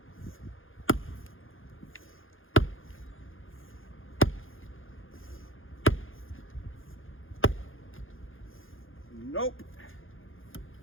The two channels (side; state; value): right; late; 0.59 ms